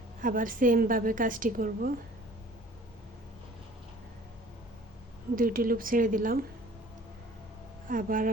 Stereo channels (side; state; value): both; normal; correlation 0.50